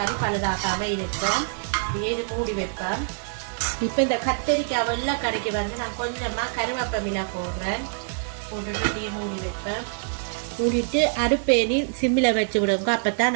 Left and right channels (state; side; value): silent; left; digital silence